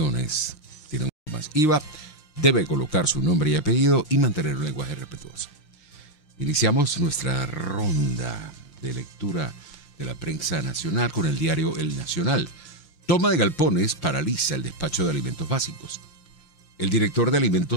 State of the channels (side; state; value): right; late; 6.5 ms